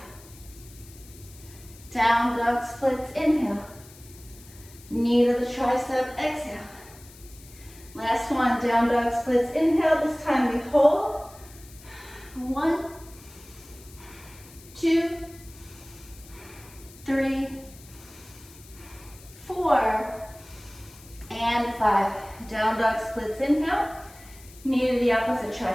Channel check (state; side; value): noise; left; hiss, 21 dB below the sound